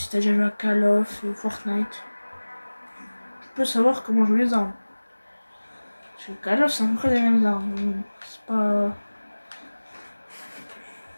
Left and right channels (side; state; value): both; inverted; correlation -1.00